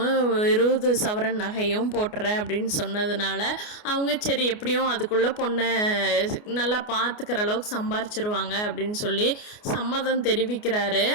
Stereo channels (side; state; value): right; late; 29 ms